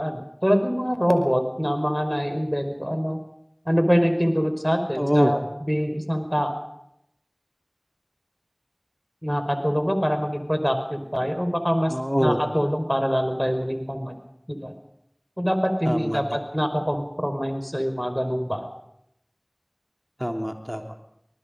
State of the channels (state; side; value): identical; both; correlation 1.00